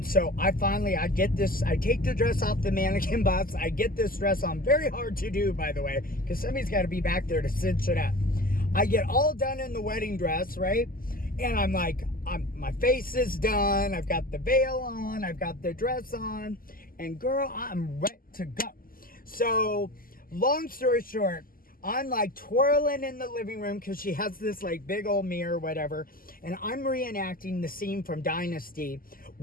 so I take the dress off the mannequin bust, I get this dress on, very hard to do, by the way, because somebody's got to be back there to cinch it up. I get all done in the wedding dress, right? And I'm like, my face is done, I've got the veil on, I've got the dress on, and girl, I'm ready to go. So, long story short, I'm like twirling in the living room because she has this like big old mirror or whatever, and I'm reenacting the scene from Dynasty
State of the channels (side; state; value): right; late; 0.42 ms